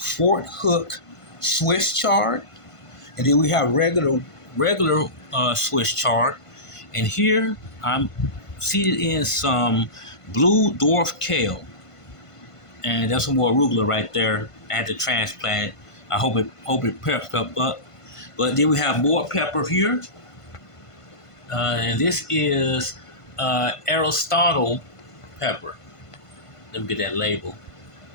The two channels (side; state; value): right; late; 1.5 ms